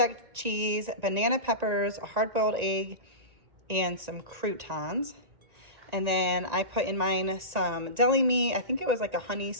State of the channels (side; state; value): left; late; 1.9 ms